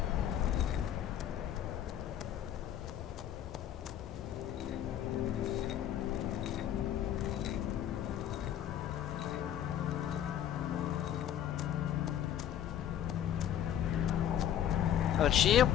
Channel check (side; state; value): right; quieter; 10.5 dB